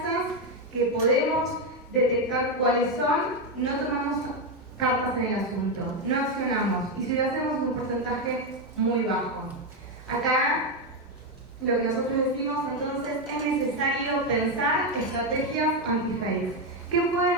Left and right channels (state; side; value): normal; both; correlation 0.07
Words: que podemos detectar cuáles son, no tomamos cartas en el asunto, no accionamos, y si lo hacemos es un porcentaje muy bajo. Acá lo que nosotros decimos entonces es necesario pensar estrategias anti-fake. ¿Qué